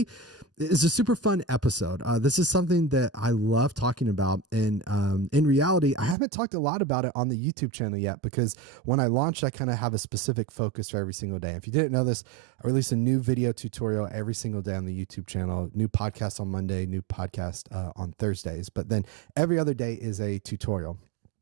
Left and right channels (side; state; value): left; drops out; at 6.2 s